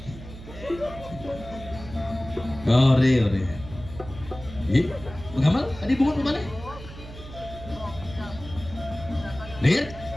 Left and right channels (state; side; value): noise; right; hum, 14 dB below the sound